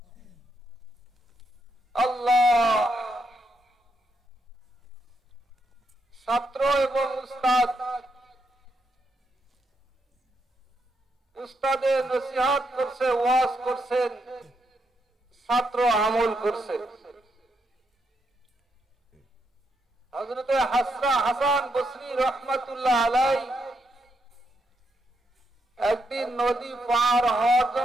আল্লাহ। ছাত্র এবং উস্তাদ, উস্তাদে নসিহত করছে, ওয়াজ করছেন, ছাত্র আমল করছে। হযরত হাসান বসরি রহমাতুল্লাহ আলাইহি একদিন নদী পার হওয়ার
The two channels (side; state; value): both; normal; correlation 0.80